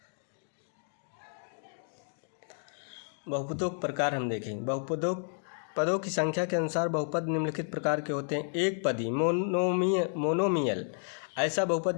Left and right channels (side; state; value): right; silent; 57 dB below the other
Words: बहुपदों के प्रकार हम देखेंगे। पदों की संख्या के अनुसार बहुपद निम्नलिखित प्रकार के होते हैं। एक पदी मोनोमियल, ऐसा बहुपद